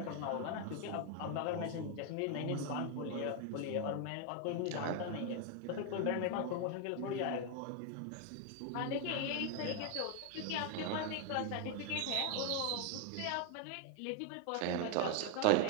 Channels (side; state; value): both; different; correlation 0.00